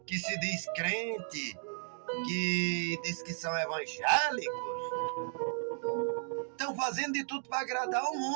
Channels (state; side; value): silent; left; digital silence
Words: que se diz crente, que diz que são evangélicos, estão fazendo de tudo para agradar o